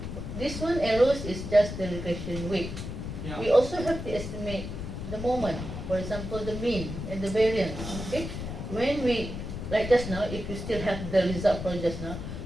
this one arrows is just the regression weight. Yeah. We also have to estimate the moment, for example the mean and the variance. Okay, when we, like just now, if you still have the result for just now,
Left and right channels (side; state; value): left; noise; rumble, 7 dB below the sound